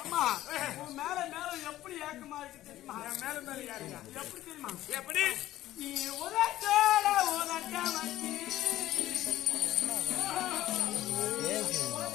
உன் மேல மேல எப்படி ஏக்கமா இருக்கு தெரியுமா? மேல மேல யாருங்க எப்படி தெரியுமா? எப்படி நீ உதட்டோட உதட்ட வச்சு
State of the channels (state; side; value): quieter; right; 14.5 dB